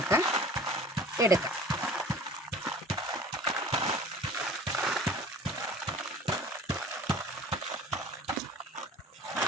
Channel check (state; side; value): normal; both; correlation 0.44